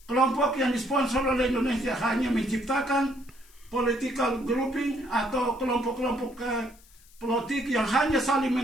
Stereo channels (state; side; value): noise; left; hiss, 27 dB below the sound